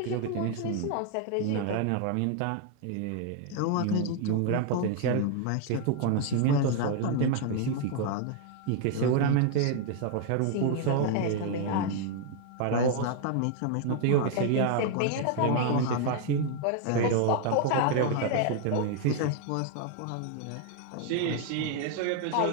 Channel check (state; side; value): different; both; correlation 0.00